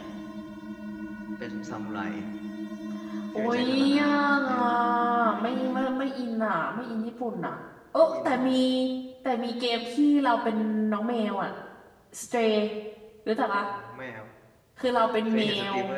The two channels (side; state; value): both; identical; correlation 1.00